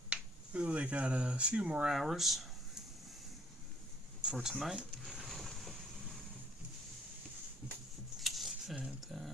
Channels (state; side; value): normal; both; correlation 0.62